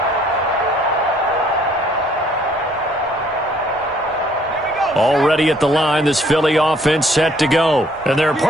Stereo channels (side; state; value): both; normal; correlation 0.62